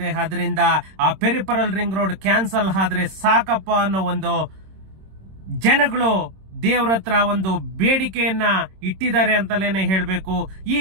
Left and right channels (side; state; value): left; late; 26 ms